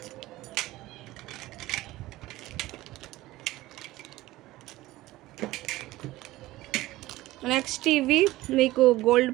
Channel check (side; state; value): left; quieter; 17.4 dB